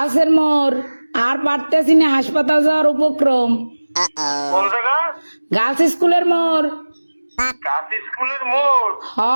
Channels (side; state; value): both; inverted; correlation -1.00